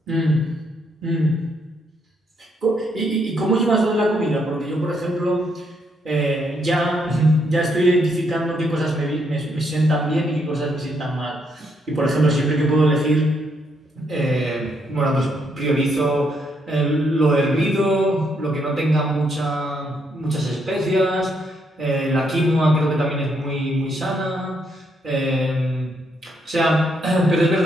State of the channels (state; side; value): normal; both; correlation 0.75